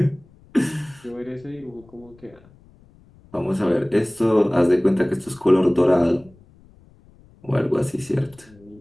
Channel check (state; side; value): noise; left; rumble, 27 dB below the sound